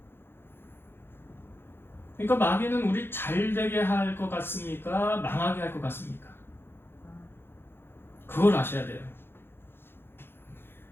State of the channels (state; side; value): late; right; 0.11 ms